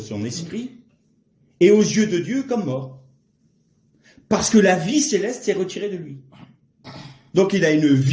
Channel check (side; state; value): both; identical; correlation 1.00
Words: esprit, est aux yeux de Dieu comme mort. Parce que la vie céleste s'est retirée de lui. Donc il a une